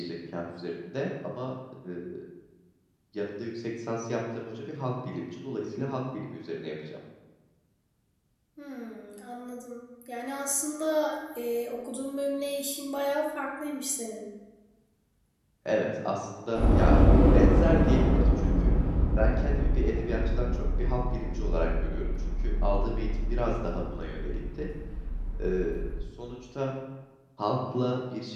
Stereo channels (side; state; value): both; identical; correlation 1.00